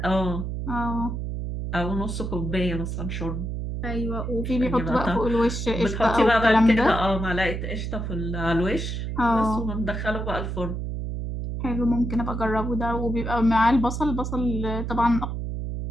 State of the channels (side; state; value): right; noise; hum, 4 dB below the sound